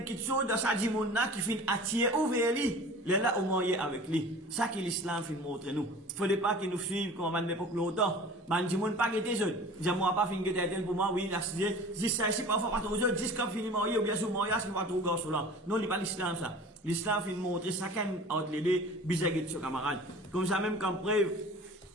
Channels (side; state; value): both; normal; correlation 0.42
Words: chose dans sa dimona qui fait attirer vers lui. Là, au moyen avec lui. Ça que l'islam fait montrer nous. Faudrait pas qu'il nous suive comme à l'époque longtemps. Man, dis-moi pas que t'es jeune. Dis-moi pas fin que t'es pour moi, oui, dis ça ici parfois pas trop jeune. Dis comme fini marié ou bien sous mariage qui va trop gauche là. Non, il n'est pas l'islam ça. L'islam fait montrer chacun entre les deux, bisaguet sur camarade. Comme ça même comme preuve,